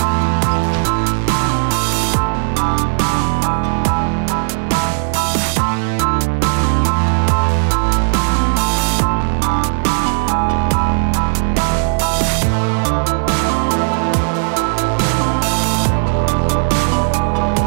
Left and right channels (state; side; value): silent; left; digital silence